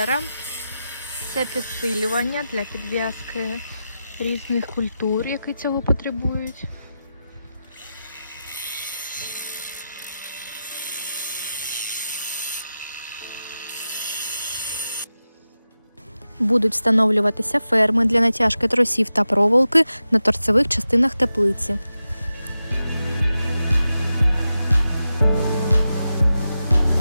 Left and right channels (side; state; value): both; inverted; correlation -0.91